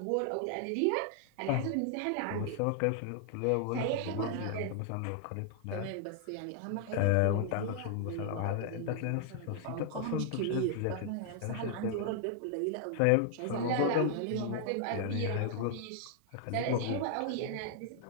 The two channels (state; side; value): different; both; correlation -0.01